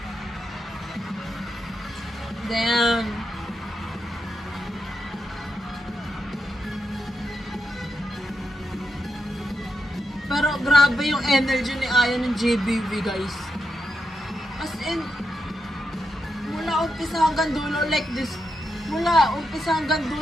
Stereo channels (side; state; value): both; normal; correlation 0.85